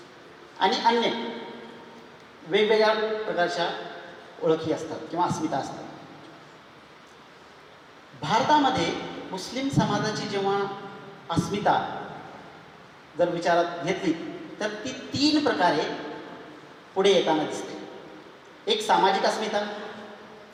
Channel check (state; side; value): identical; both; correlation 1.00